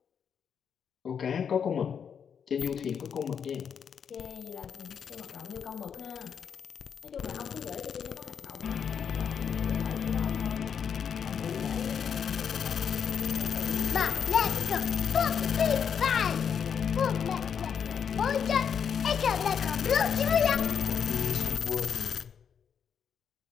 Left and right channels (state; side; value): quieter; right; 7.4 dB